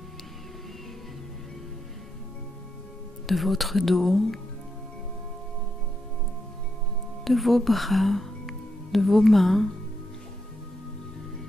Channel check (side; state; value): both; normal; correlation 0.82